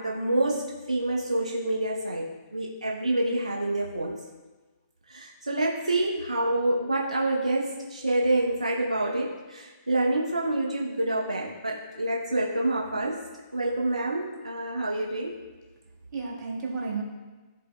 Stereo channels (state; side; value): inverted; both; correlation -0.83